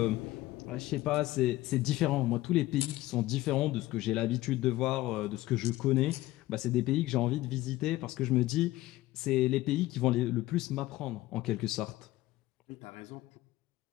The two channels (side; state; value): right; quieter; 17.1 dB